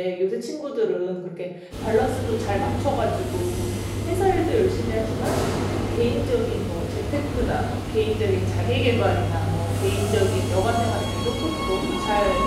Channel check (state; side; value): identical; both; correlation 1.00